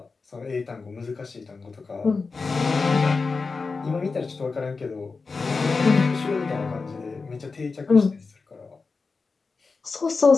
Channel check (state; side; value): quieter; right; 4.4 dB